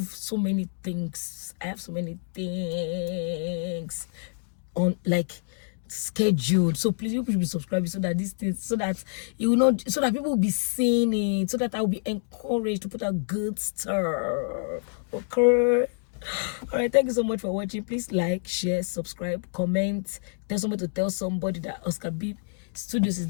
so many things. On, like, scheduled, so please you should be subscribing, so that these things, so that you will not, so that people will be seeing it, so that I'll be encouraged to put out good stuff. Okay, all right, thank you so much for watching. Please like, share, subscribe, comment, tell somebody to tell somebody that Oscar B.Studios is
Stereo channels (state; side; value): silent; right; digital silence